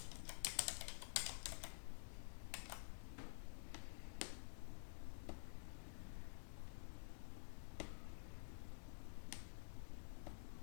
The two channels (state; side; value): silent; right; digital silence